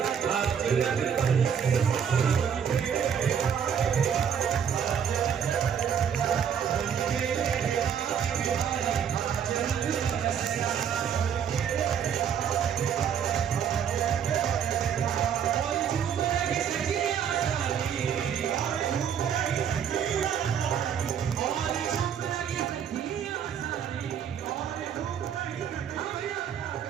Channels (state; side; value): quieter; left; 8.1 dB